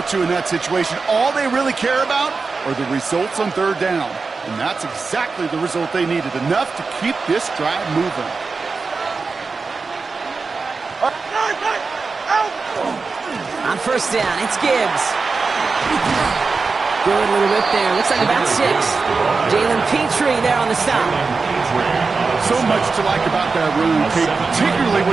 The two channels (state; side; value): quieter; left; 4.4 dB